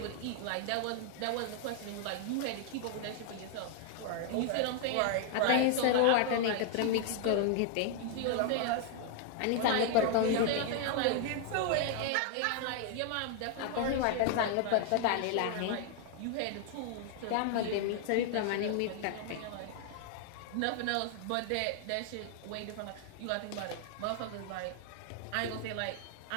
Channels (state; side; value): different; both; correlation 0.00